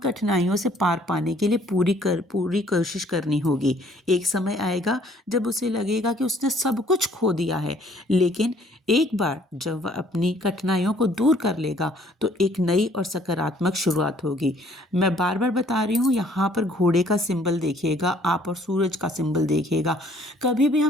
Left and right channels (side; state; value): both; normal; correlation 0.60